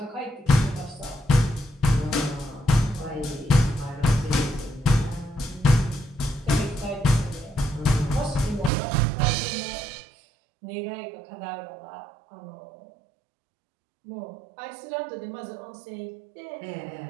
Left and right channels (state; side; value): drops out; left; at 8.7 s